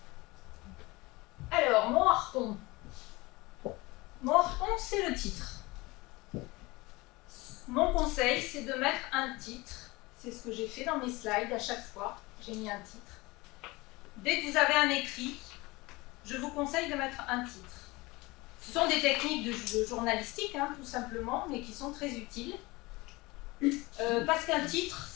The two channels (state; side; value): quieter; right; 22.6 dB